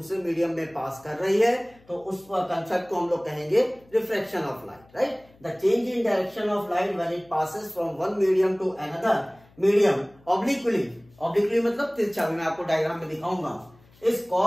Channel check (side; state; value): left; noise; hum, 29 dB below the sound